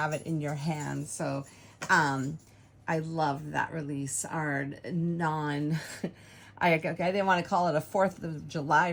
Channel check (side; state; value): both; identical; correlation 1.00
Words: it in your hands. So I love that release, our non I didn't want to call it a 4th of July